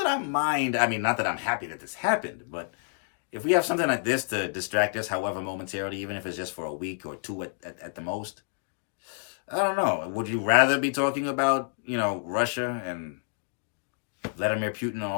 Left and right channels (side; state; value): right; silent; digital silence